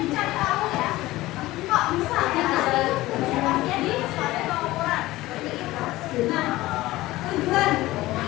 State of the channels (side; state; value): right; quieter; 17.7 dB